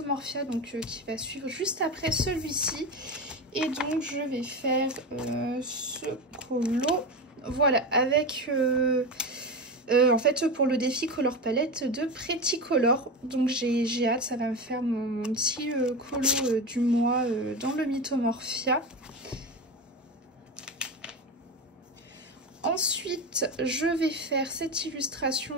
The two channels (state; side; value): normal; both; correlation 0.21